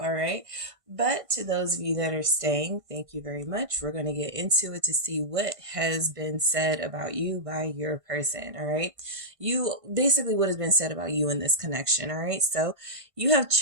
right? But to those of you that are staying, thank you very much. We're going to get into it to see what has been said about you by your person, all right? Basically what has been said about you in this connection, all right? So you have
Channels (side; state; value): left; late; 1.5 ms